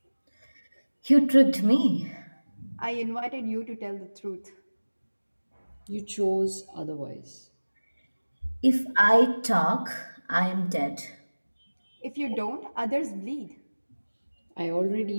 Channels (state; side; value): inverted; both; correlation -1.00